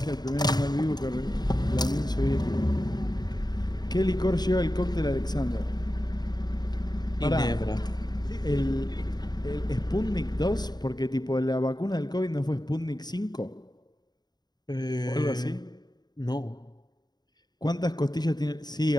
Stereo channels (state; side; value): late; right; 0.20 ms